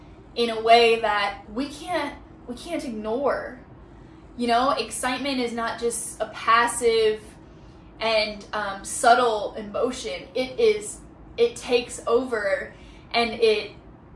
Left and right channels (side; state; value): both; identical; correlation 1.00